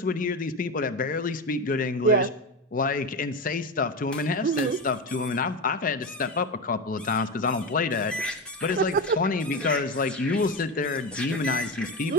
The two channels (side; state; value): both; normal; correlation 0.19